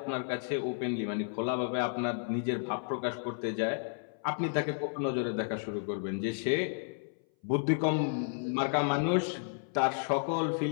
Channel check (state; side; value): silent; right; 56 dB below the other